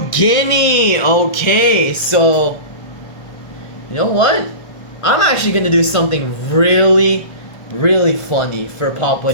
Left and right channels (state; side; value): late; right; 1.5 ms